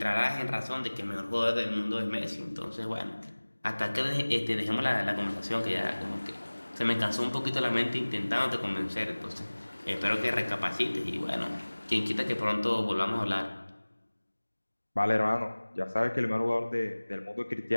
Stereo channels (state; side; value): inverted; both; correlation -1.00